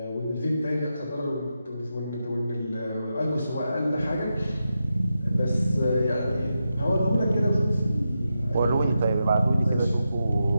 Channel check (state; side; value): inverted; both; correlation -0.88